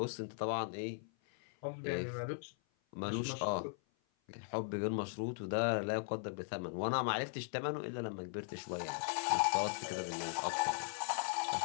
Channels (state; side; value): silent; right; 52 dB below the other